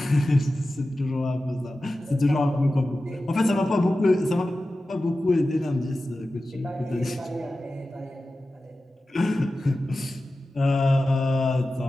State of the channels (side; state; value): both; normal; correlation 0.94